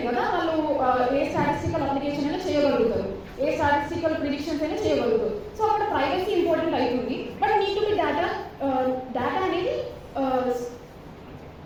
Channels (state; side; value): identical; both; correlation 1.00